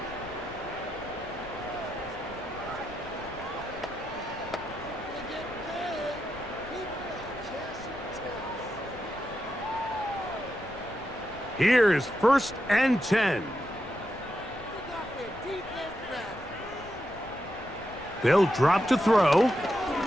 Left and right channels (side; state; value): left; noise; rumble, 18 dB below the sound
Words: Here's 1st and 10. They'll drop to throw.